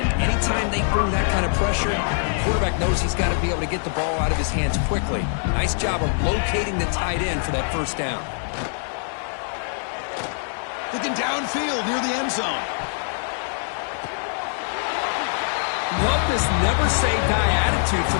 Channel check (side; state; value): right; silent; 63 dB below the other